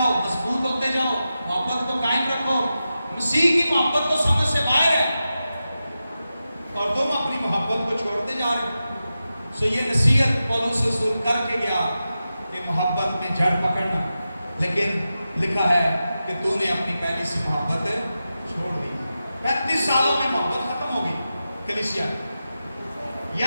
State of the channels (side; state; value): both; inverted; correlation -0.92